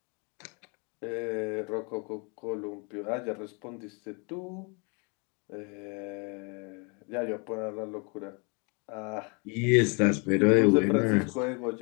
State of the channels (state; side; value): quieter; right; 33.7 dB